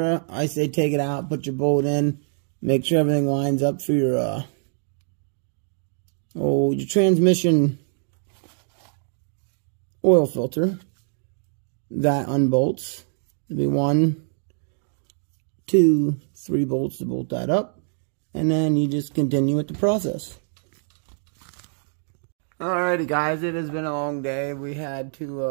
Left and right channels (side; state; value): left; silent; digital silence